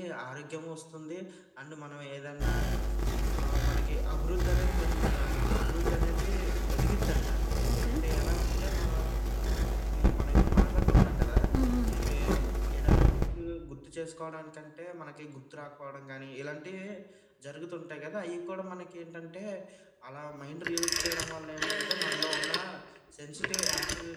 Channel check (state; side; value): identical; both; correlation 1.00